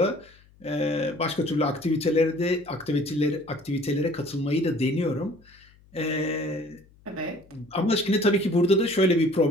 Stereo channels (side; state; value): left; noise; hum, 28 dB below the sound